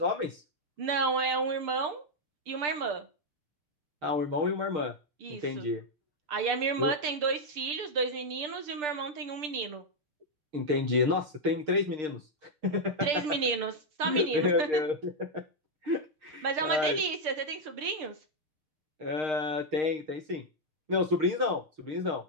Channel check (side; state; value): left; late; 6.8 ms